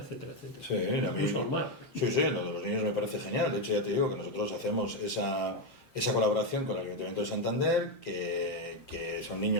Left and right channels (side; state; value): both; normal; correlation 0.06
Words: etcétera. Sí, a mí, sí, lo de los niños me parece genial. De hecho, ya te digo que nosotros hacemos esa colaboración con el Ayuntamiento de Santander, que son